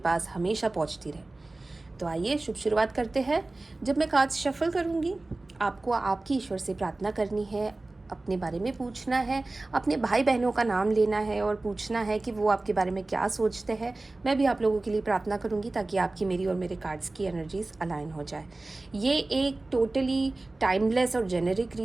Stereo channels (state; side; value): quieter; left; 3.0 dB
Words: हमेशा पहुंचती रहे। तो आइए शुरुआत करते हैं। जब मैं कार्ड्स शफल करूंगी, आपको आपकी ईश्वर से प्रार्थना करनी है, अपने बारे में पूछना है, अपने भाई बहनों का नाम लेना है और पूछना है कि वो आपके बारे में क्या सोचते हैं। मैं भी आप लोगों के लिए प्रार्थना करूंगी ताकि आपकी, मेरी और मेरे कार्ड्स की एनर्जीज अलाइन हो जाए। ये एक टोटली टाइमलेस और जेनेरिक